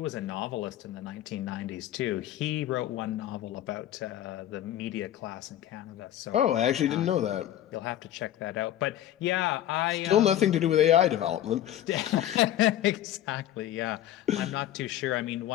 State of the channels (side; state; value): right; quieter; 12.4 dB